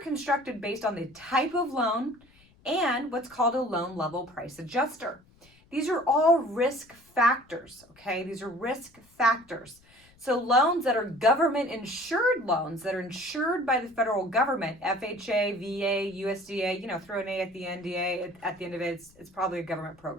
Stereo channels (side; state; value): left; noise; rumble, 30 dB below the sound